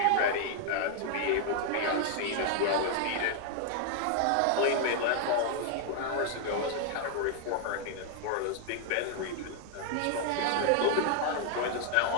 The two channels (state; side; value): different; both; correlation 0.00